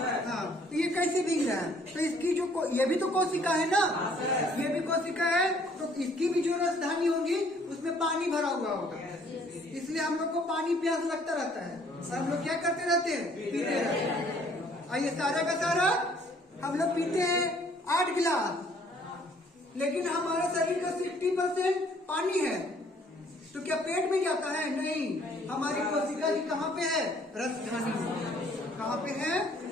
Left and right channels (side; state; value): both; normal; correlation 0.61